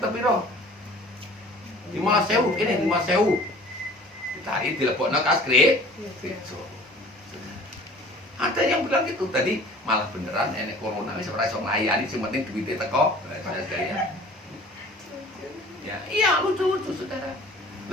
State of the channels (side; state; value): both; normal; correlation 0.47